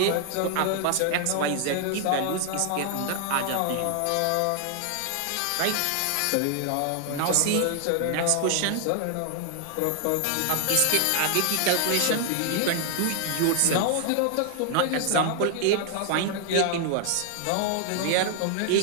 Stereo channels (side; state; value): both; different; correlation 0.00